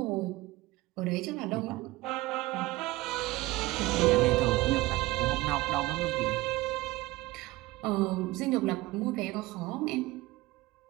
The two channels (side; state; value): left; quieter; 19.5 dB